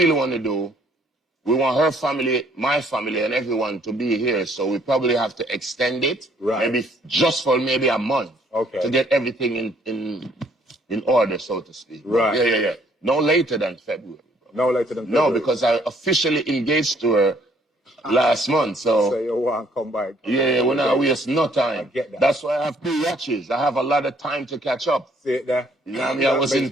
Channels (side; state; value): both; normal; correlation 0.64